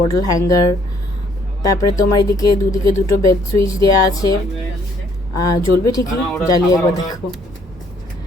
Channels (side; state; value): both; normal; correlation 0.65